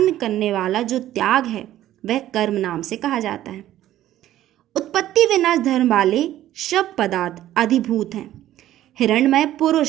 करने वाला जो त्याग है वह कर्म नाम से कहा जाता है। उत्पत्ति विनाश धर्म वाले सब पदार्थ अधिभूत हैं। हिरण्मय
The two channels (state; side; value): quieter; left; 13.3 dB